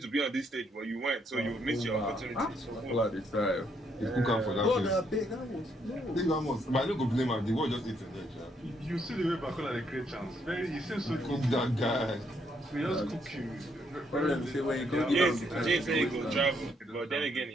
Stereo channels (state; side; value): normal; both; correlation 0.73